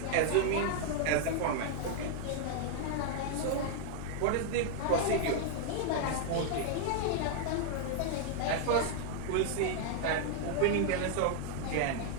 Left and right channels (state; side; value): different; both; correlation 0.00